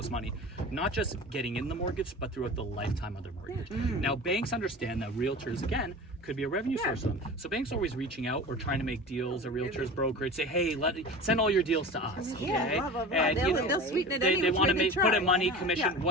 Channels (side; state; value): both; normal; correlation 0.34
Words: money. Not just getting in the mortgage, but throughout the lifetime of their mortgage. Now, banks understand that realtors, again, could be a revenue source for them. So banks are always reaching out or trying to make deals, or realtors, brokerage, say, hey, send all your deals to us. Okay? Blah, blah, blah. And They'll sweeten it they want to put in money, Yeah. commission,